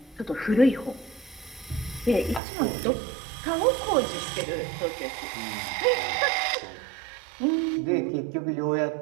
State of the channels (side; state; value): left; drops out; at 2.4 s